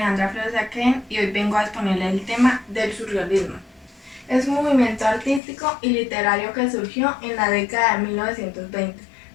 Flores de Aquén y hoy vengo a exponerle el tema del surrealismo. Es un movimiento artístico y literario que surgió en la década de 1920,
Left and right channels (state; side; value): drops out; right; at 5.4 s